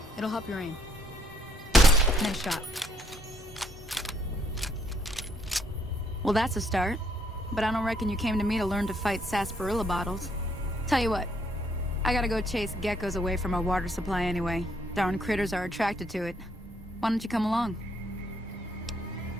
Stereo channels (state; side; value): normal; both; correlation 0.70